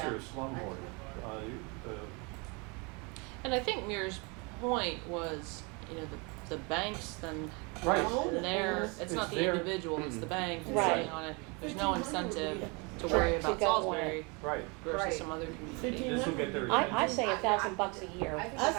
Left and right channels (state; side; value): quieter; left; 30.3 dB